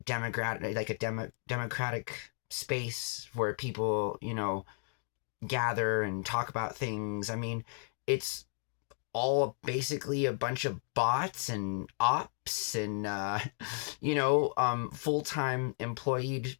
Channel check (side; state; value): right; silent; 55 dB below the other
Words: democratic space where people, gather and talk about things. I mean, it's all basically a bunch of bots and ops and full-time employed